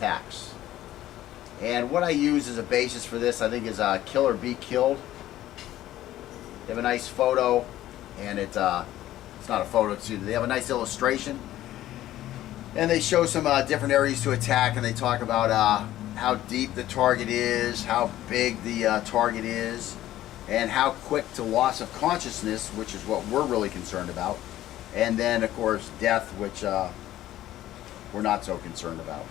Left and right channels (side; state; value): right; quieter; 13.9 dB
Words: And what I use as a basis for this, I think, is Kill or Be Killed. They have a nice photo, and it's not a photo, they have a nice illustration. And they show some different areas to attack, and they talk about how deep the target is, how big the target is, and how quick to loss of consciousness, which is what we're really concerned about. And then, of course, death, which we're not so concerned about.